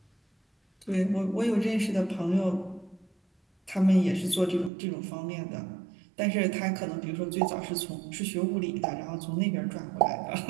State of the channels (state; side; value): drops out; left; at 4.7 s